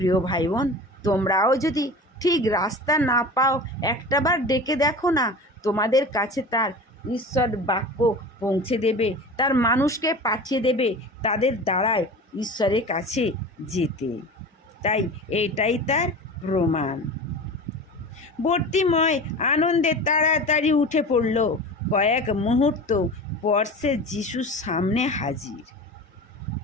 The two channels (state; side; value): normal; both; correlation 0.34